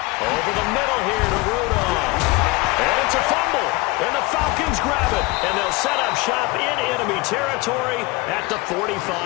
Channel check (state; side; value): quieter; right; 22.6 dB